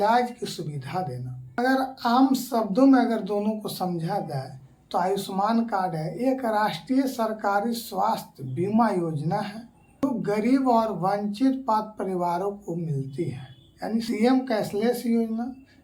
की सुविधा देना। अगर आम शब्दों में अगर दोनों को समझा जाए तो आयुष्मान कार्ड है एक राष्ट्रीय सरकारी स्वास्थ्य बीमा योजना है जो गरीब और वंचित पात्र परिवारों को मिलती है। यानी सीएम कैशलेस योजना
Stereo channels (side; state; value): both; identical; correlation 1.00